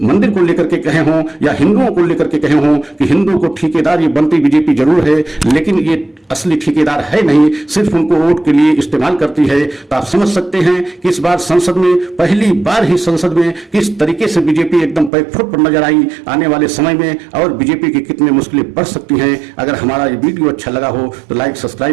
मंदिर को लेकर के कहे हों या हिंदुओं को लेकर के कहे हों कि हिंदुओं को ठेकेदार ये बनती बीजेपी जरूर है, लेकिन ये असली ठेकेदार है नहीं, सिर्फ उनको वोट के लिए इस्तेमाल करती है। तो आप समझ सकते हैं कि इस बार संसद में पहली बार ही संसद में किस तरीके से बीजेपी एकदम पैकफुट पर नजर आई। आने वाले समय में और बीजेपी की कितनी मुश्किलें बढ़ सकती हैं। अगर हमारा ये वीडियो अच्छा लगा हो तो लाइक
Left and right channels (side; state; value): left; drops out; at 15.1 s